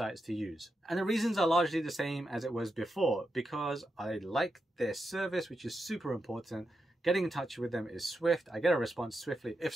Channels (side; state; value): both; normal; correlation 0.87